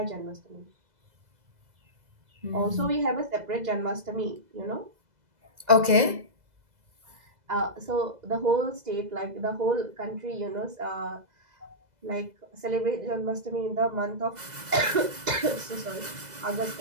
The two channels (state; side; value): late; left; 2.0 ms